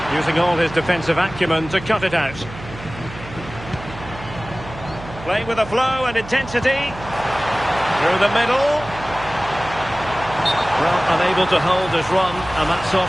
Using all his defensive acumen to cut it out. Playing with a flow and intensity. Through the middle. Well, unable to hold his run, and that's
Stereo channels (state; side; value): noise; right; hum, 14 dB below the sound